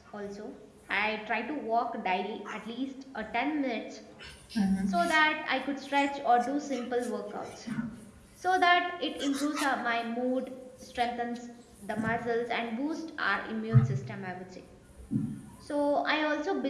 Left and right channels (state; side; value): identical; both; correlation 1.00